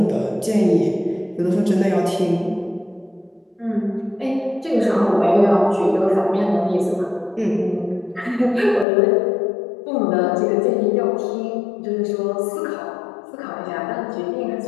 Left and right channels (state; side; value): drops out; right; at 8.8 s